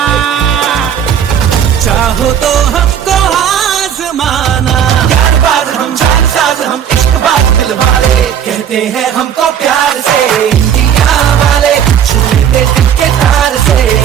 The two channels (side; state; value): left; quieter; 9.0 dB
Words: चाहो तो हमको आजमाना। ज्ञानबाज हम जानसाज हम इश्कबाज दिल वाले, कहते हैं हमको प्यार से इंडिया वाले, छू लेते दिल के तार से